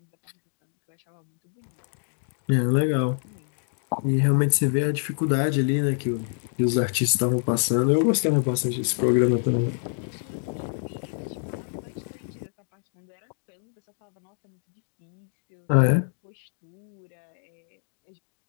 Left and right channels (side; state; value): right; silent; digital silence